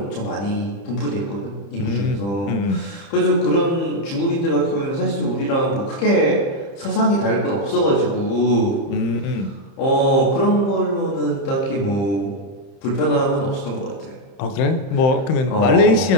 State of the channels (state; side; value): late; right; 30 ms